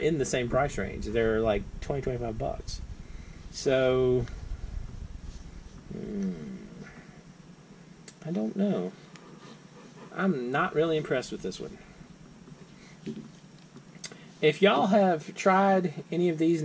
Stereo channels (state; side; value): identical; both; correlation 1.00